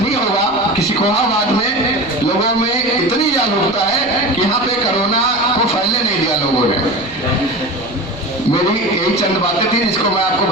होगा कि सिकोहाबाद में लोगों में इतनी जागरूकता है कि यहाँ पे कोरोना को फैलने नहीं दिया लोगों ने। मेरी यही चंद बातें थी जिसको मैं आपको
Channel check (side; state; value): right; noise; rumble, 23 dB below the sound